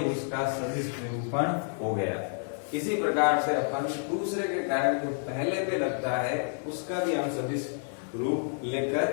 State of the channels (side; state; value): right; silent; 58 dB below the other